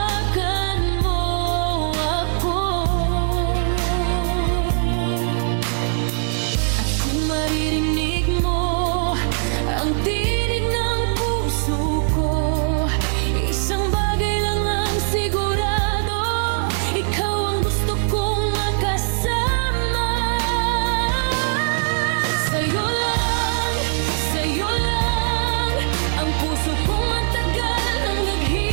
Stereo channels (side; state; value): left; silent; digital silence